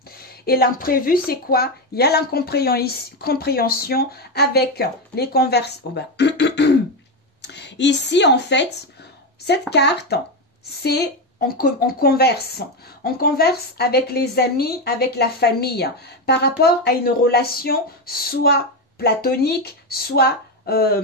Et l'imprévu, c'est quoi? Il y a l'incompréhension avec les conversations. Ici, en fait, cette carte, c'est on converse. On converse avec les amis, avec la famille, par rapport à une relation soit platonique, soit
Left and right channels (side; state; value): both; normal; correlation 0.11